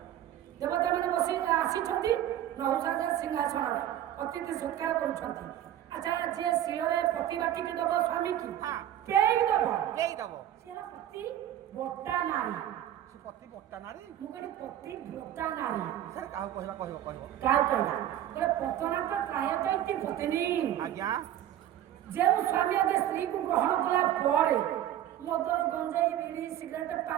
ଦେବତାମାନେ ବସି ଆସିଛନ୍ତି ନହୁଷା ସିଂହାସନରେ ଅତିଥି ସତ୍କାର କରୁଛନ୍ତି। ଆଚ୍ଛା ଯିଏ ଶିଳରେ ପତି ବାଟିକି ଦବ ସ୍ୱାମୀ କି ପେଇ ଦବ ସେ ପତି ବଟା ନାରୀ ପତି ବଟା ନାରୀ ମୁଁ କହିଲି ପତି ବଟା ନାରୀ ସାର୍ କାହାକୁ କହିବା କହିବ କାହାକୁ କହିଲା କହିଲେ ପତନା ତ ପ୍ରାୟତଃ ଇତି ପତ୍ନୀ ଆଜ୍ଞା ଯେଉଁ ସ୍ୱାମୀ ଆଗେ ସ୍ତ୍ରୀକୁ ଗ୍ରହଣ କଲା ପରେ ମଦ ଗଞ୍ଜେଇ ବିଡ଼ି ସିଗାରେଟ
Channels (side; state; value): left; quieter; 11.8 dB